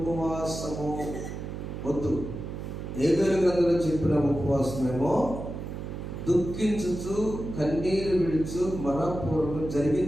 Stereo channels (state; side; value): noise; right; hum, 7 dB below the sound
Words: వద్దు. హేబేలు గ్రంథంలో చెప్పిన ఉపవాసమేమో దుఃఖించుచు కన్నీరు విడుచు మనపూర్వకం